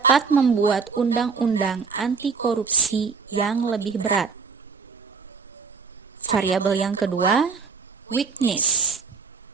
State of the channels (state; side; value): quieter; left; 5.2 dB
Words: membuat undang-undang anti korupsi yang lebih berat. Variabel yang kedua, weakness